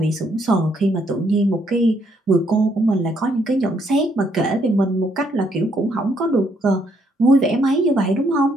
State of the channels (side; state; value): both; normal; correlation 0.71